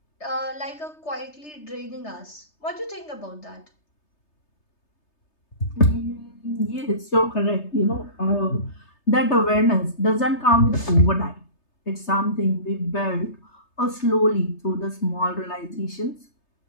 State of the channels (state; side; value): late; right; 3.3 ms